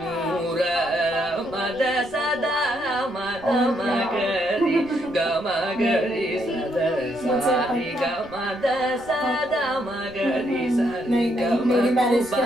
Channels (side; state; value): right; noise; rumble, 23 dB below the sound